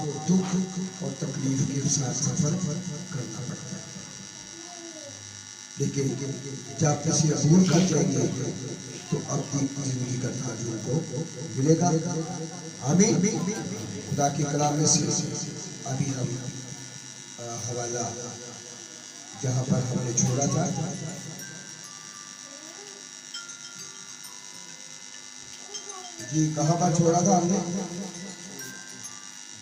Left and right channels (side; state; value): both; identical; correlation 1.00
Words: दुख और तकलीफ के साथ सफर करना पड़ता है। लेकिन जब किसी अबूल कर जाएंगे तो अपनी जिंदगी का ताज उनको मिलेगा। आमीन। खुदा की कलाम में से अभी हम हवाला जहाँ पर हमने छोड़ा था, जी कहाँ पर छोड़ा था हमने?